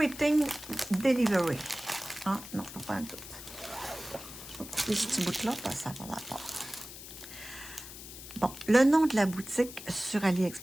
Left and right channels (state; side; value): noise; left; hiss, 13 dB below the sound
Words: delivery. Ah, non, pas un tout. Je vais couper ce petit bout-là, parce que ça va rapport. Bon, le nom de la boutique sur